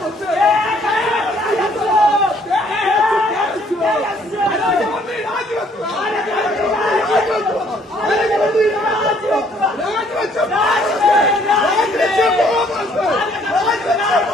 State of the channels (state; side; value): normal; both; correlation 0.63